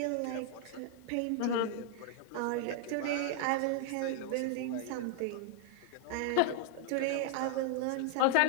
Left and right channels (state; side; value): different; both; correlation 0.00